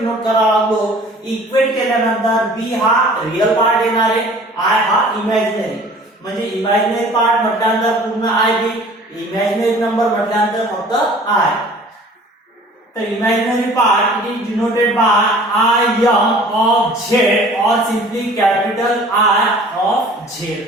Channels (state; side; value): normal; both; correlation 0.48